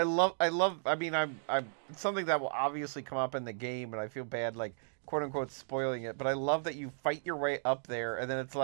love. I mean, I'm it's something that will obviously come up in the game, and I feel bad, like, quote unquote, spoiling it. But I love that you fight your way up there, and then it's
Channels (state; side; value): silent; left; digital silence